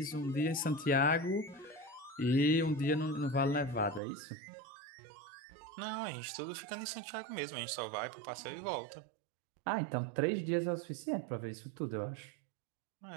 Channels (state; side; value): drops out; left; at 4.0 s